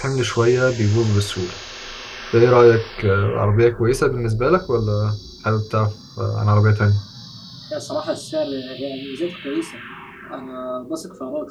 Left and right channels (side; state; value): both; identical; correlation 1.00